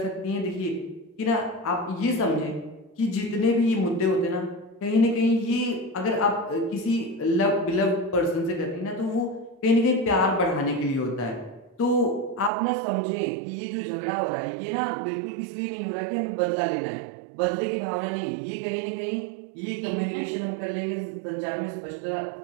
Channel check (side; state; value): left; drops out; at 12.5 s